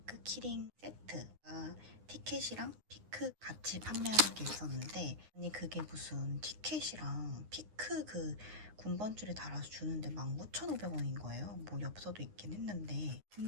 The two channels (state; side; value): late; left; 9.6 ms